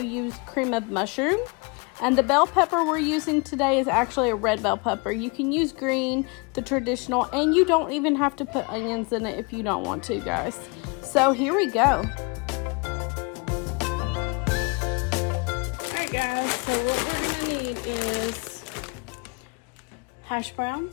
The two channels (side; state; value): right; quieter; 31.0 dB